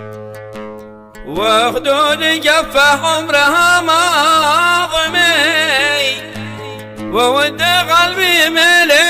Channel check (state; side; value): identical; both; correlation 1.00